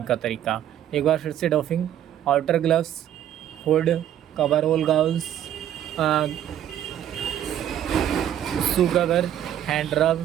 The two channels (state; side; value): quieter; left; 11.0 dB